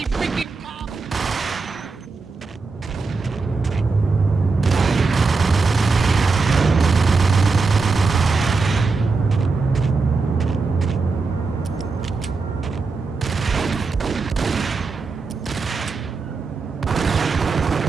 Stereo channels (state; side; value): quieter; left; 4.2 dB